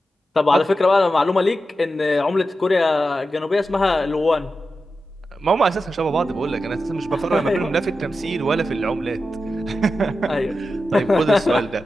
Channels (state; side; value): normal; both; correlation 0.91